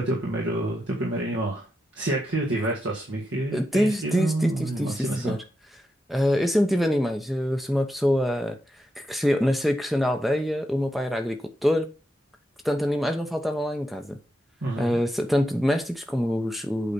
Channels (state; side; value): normal; both; correlation 0.86